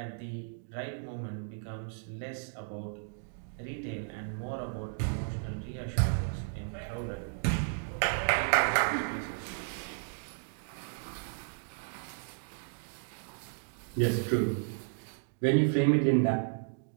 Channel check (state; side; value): silent; left; digital silence